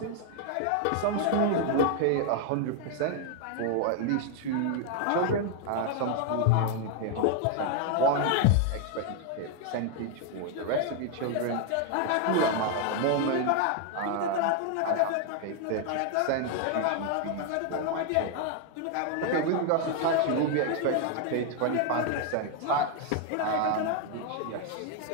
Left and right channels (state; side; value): different; both; correlation 0.00